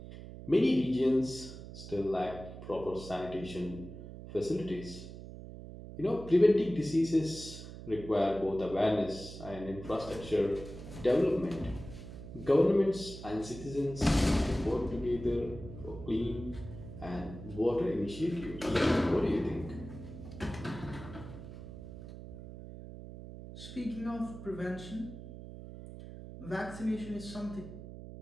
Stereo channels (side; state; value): right; noise; hum, 12 dB below the sound